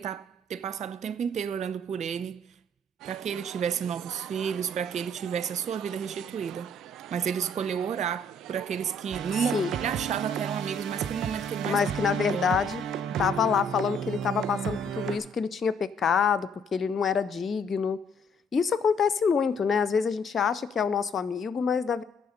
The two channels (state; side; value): normal; both; correlation 0.63